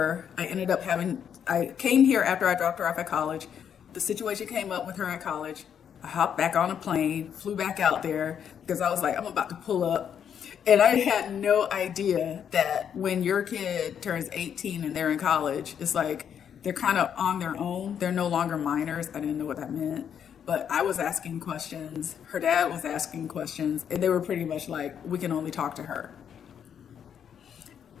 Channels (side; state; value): right; quieter; 8.4 dB